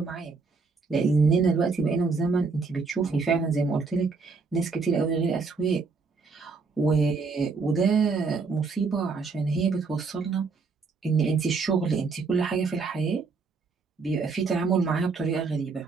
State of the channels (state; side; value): quieter; left; 4.5 dB